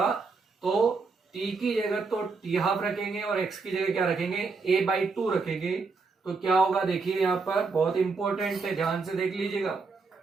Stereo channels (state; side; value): quieter; left; 4.4 dB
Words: तो t की जगह तो टी हाफ रखेंगे और x की जगह क्या रखेंगे? a/2 रखेंगे। तो क्या होगा? देखिए यहाँ पर बहुत इंपॉर्टेंट है, ध्यान से देख लीजिएगा।